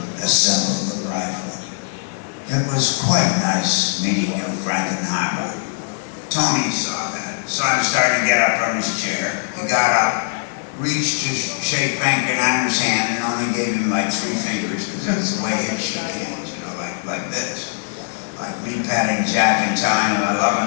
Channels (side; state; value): right; silent; 61 dB below the other